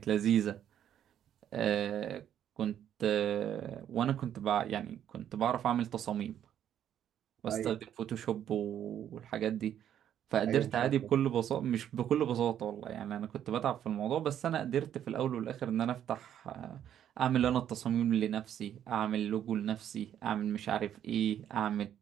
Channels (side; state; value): left; quieter; 10.1 dB